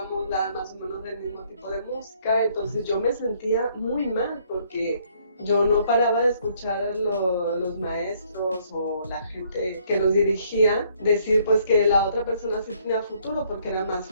más o menos del mismo tipo de música. Entonces yo me sentía muy mal porque Yo no paraba de escuchar a los maestros o la gente que nos dirigía decir pues que la otra persona sí tenía futuro porque era más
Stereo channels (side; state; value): both; inverted; correlation -0.65